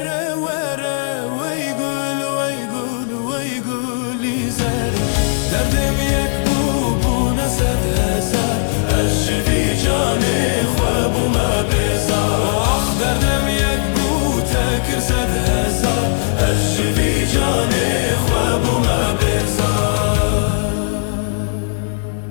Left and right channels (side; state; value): right; silent; digital silence